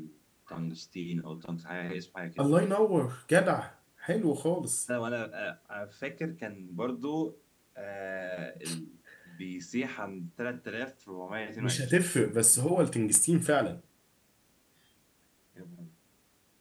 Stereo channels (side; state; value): both; identical; correlation 1.00